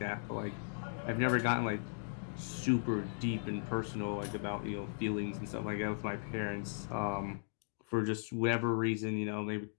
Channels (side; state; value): right; silent; digital silence